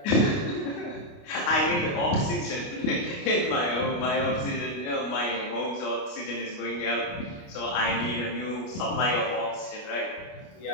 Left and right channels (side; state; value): right; late; 29 ms